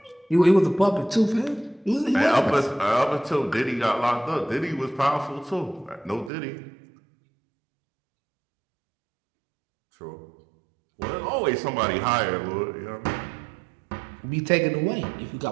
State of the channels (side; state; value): left; drops out; at 6.3 s